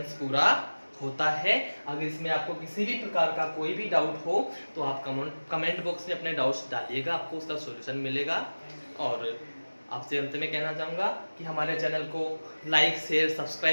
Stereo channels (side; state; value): both; inverted; correlation -1.00